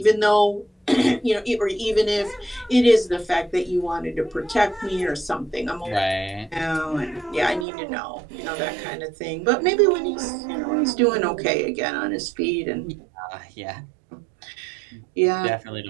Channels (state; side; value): drops out; left; at 7.7 s